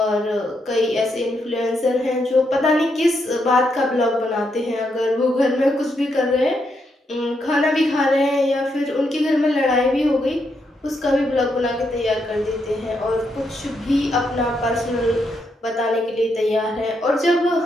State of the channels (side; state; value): both; normal; correlation 0.80